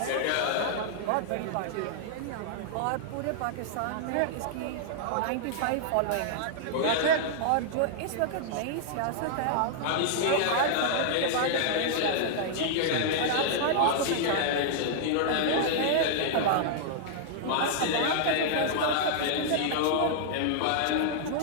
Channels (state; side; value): different; both; correlation -0.01